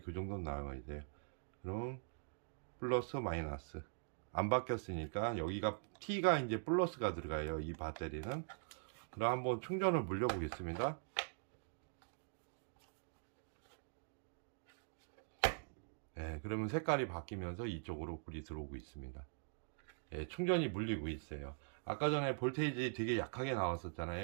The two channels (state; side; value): silent; left; digital silence